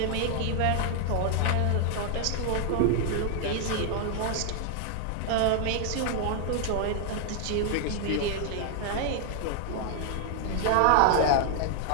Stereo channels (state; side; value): different; both; correlation 0.00